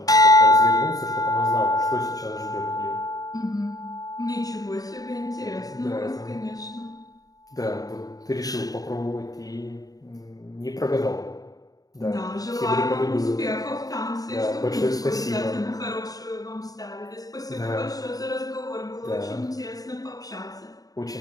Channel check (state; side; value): late; right; 0.18 ms